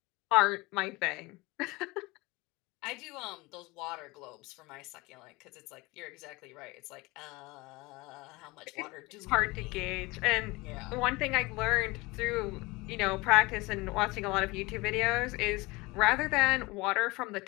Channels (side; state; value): right; quieter; 23.2 dB